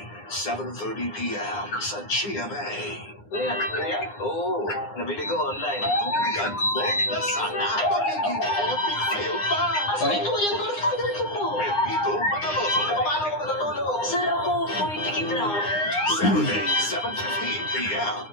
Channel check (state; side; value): late; right; 9.8 ms